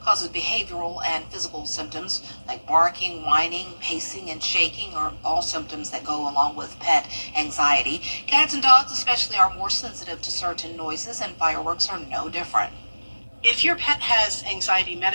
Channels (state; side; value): inverted; both; correlation -1.00